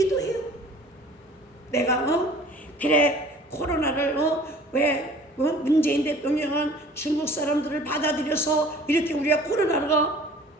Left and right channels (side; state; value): both; normal; correlation 0.49